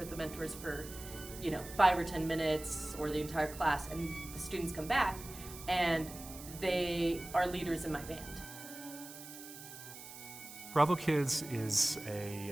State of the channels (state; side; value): noise; right; hiss, 13 dB below the sound